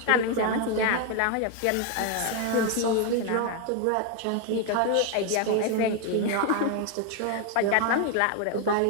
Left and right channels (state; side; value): different; both; correlation 0.01